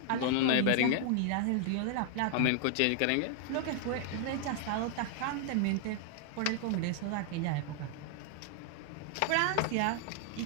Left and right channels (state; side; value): different; both; correlation 0.00